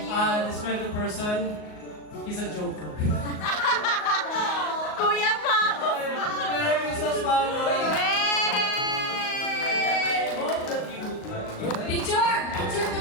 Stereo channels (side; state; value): right; late; 38 ms